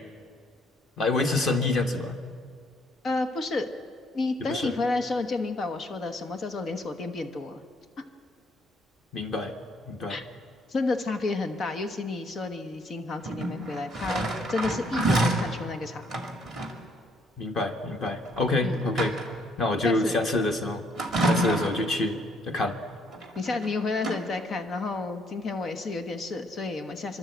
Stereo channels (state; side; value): normal; both; correlation 0.67